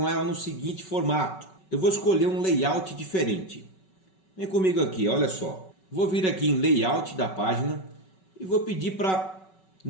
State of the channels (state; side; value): late; right; 5.3 ms